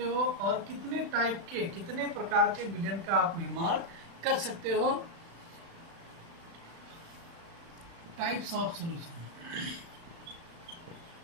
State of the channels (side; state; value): left; late; 36 ms